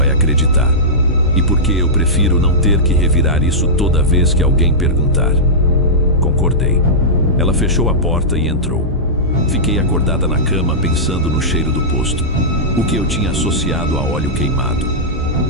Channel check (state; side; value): normal; both; correlation -0.13